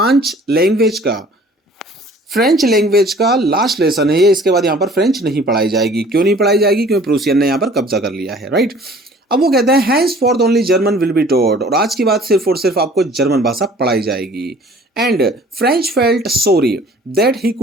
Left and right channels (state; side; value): normal; both; correlation 0.51